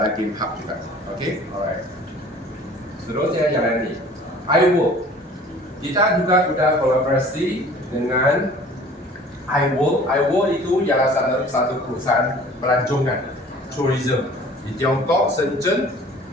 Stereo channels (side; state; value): both; normal; correlation 0.48